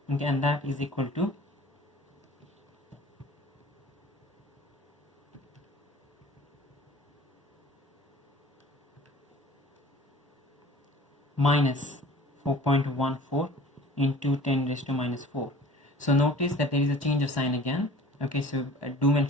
okay, and that is equal to minus 4.14 into 10 raised to minus 4. So notice that there is a change of sign again. Okay, so do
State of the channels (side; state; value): both; normal; correlation 0.46